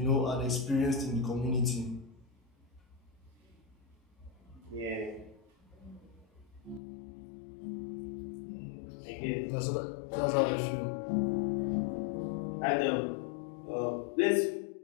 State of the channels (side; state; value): right; drops out; at 6.8 s